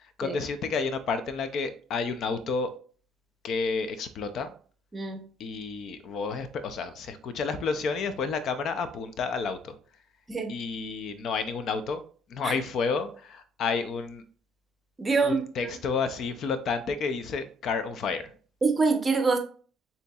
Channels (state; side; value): normal; both; correlation 0.66